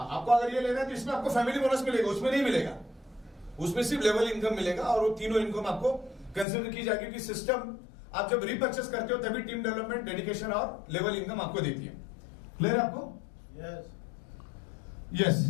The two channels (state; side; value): drops out; right; at 6.5 s